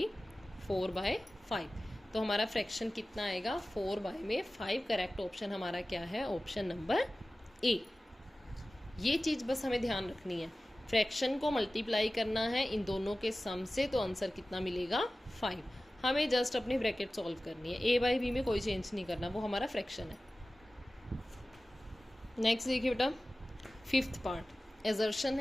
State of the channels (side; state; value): both; normal; correlation 0.96